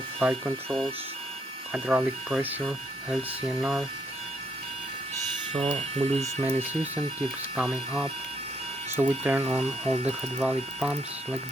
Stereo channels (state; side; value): normal; both; correlation 0.73